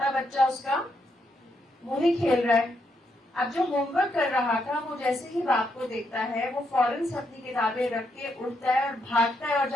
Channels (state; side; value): normal; both; correlation 0.79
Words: بچہ اس کا وہی کھیل رہا ہے. اب جو ہوم ورک کر رہا تھا وہ جیسے ہی باپ کو دیکھتا ہے وہ فوراً سے اپنی کتابیں رکھ کے اٹھتا ہے اور بھاگتا ہے اور